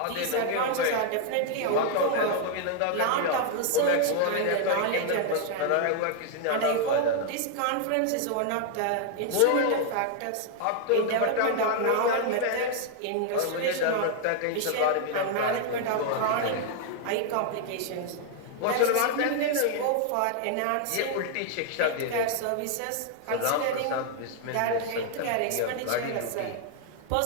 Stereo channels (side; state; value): both; different; correlation 0.00